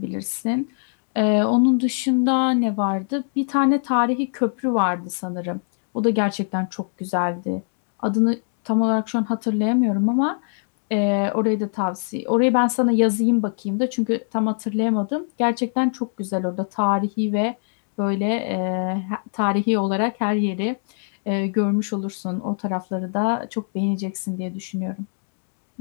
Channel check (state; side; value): silent; right; digital silence